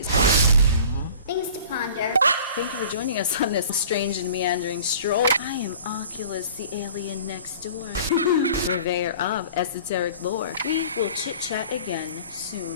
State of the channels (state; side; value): inverted; both; correlation -0.45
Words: Things to ponder. Thank you for joining us on this strange and meandering stroll. I am Oculus, the alien next door. Purveyor of esoteric lore. We will chit-chat again